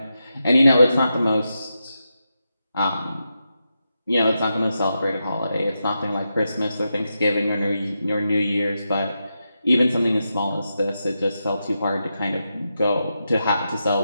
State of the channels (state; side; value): inverted; both; correlation -0.87